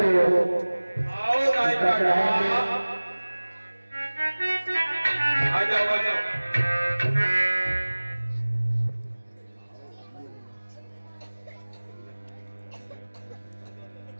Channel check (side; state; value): both; inverted; correlation -1.00